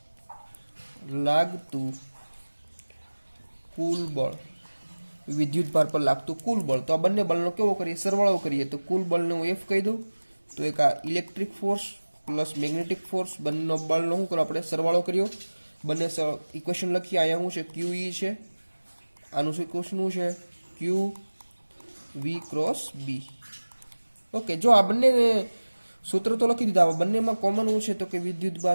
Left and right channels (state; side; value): inverted; both; correlation -1.00